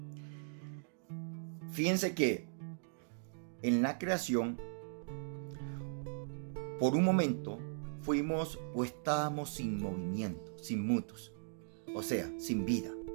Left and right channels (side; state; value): left; silent; digital silence